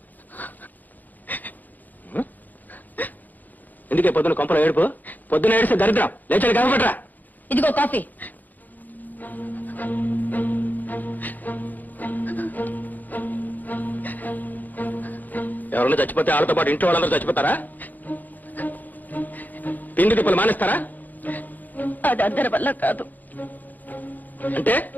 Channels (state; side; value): late; right; 0.083 ms